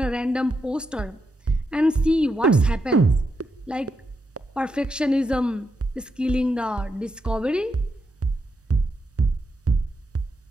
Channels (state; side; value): normal; both; correlation 0.84